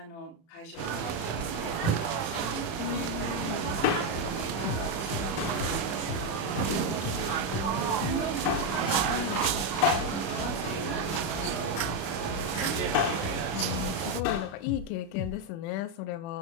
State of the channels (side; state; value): right; late; 36 ms